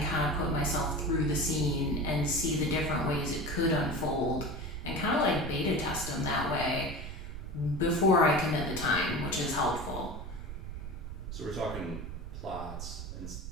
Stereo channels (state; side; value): noise; right; rumble, 8 dB below the sound